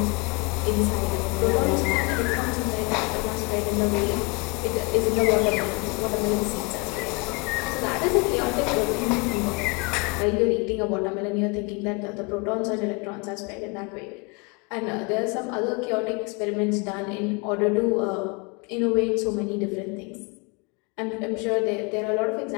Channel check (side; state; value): right; quieter; 29.9 dB